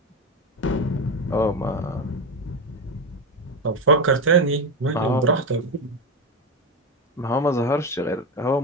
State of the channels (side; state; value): both; normal; correlation 0.16